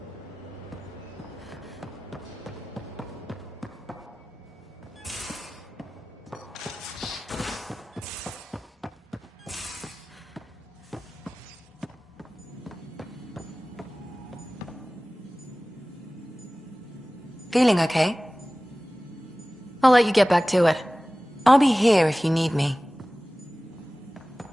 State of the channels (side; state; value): both; normal; correlation 0.98